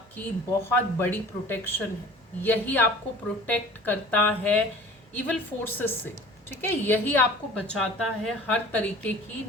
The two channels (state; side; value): normal; both; correlation 0.45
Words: बहुत बड़ी प्रोटेक्शन है। यही आपको प्रोटेक्ट करता है इविल फोर्सेस से। ठीक है, यही आपको बचाता है हर तरीके की